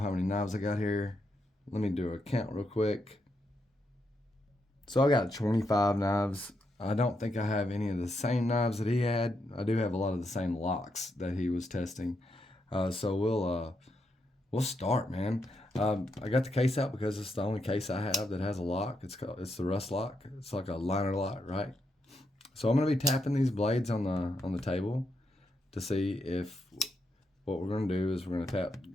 many knives I got here. Let me do a count real quick. So I got 25 knives. I don't think I have any of the same knives that he had. I do have a lot of the same locks that he was testing. So we'll start, man. I got the case out because it's the only case I have that has a lock. It's the rust lock. It's like a liner lock, right? So I'm gonna be tapping these blades on the table to see if what we're gonna do is we're gonna tap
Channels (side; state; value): both; normal; correlation 0.81